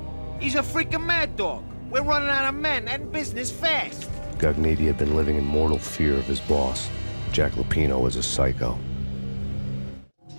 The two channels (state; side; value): inverted; both; correlation -1.00